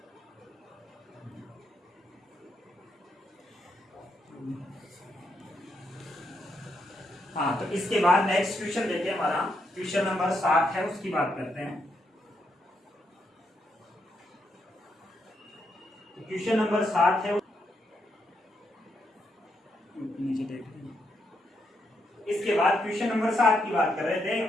हाँ, तो इसके बाद नेक्स्ट क्वेश्चन देखिए, हमारा क्वेश्चन नंबर 7 है, उसकी बात करते हैं। क्वेश्चन नंबर 7 है, नीचे देख लीजिए। इसके बाद क्वेश्चन नंबर 7 की बात कर रहे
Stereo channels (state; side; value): normal; both; correlation 0.80